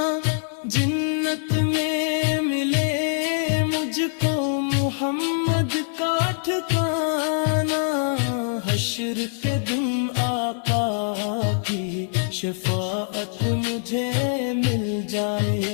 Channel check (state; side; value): silent; right; digital silence